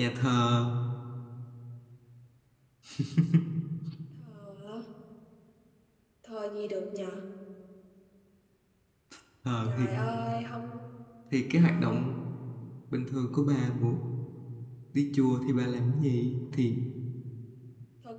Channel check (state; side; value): identical; both; correlation 1.00